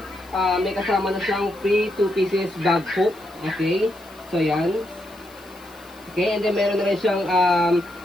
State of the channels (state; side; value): noise; left; hiss, 25 dB below the sound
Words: may kasama na siyang free 2 pieces bag hook. Okay, so yan. Okay, and then meron na rin siyang